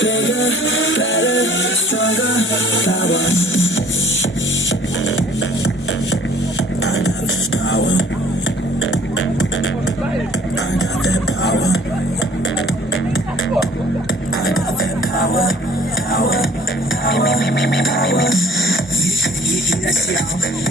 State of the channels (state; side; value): normal; both; correlation 0.54